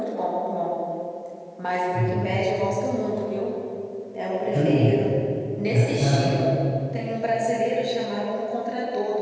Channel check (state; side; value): identical; both; correlation 1.00